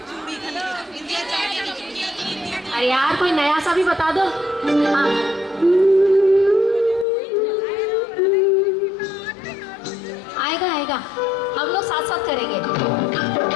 अरे यार कोई नया सा भी बता दो। हाँ आएगा आएगा, हम लोग साथ साथ करेंगे।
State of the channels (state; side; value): drops out; right; at 7.1 s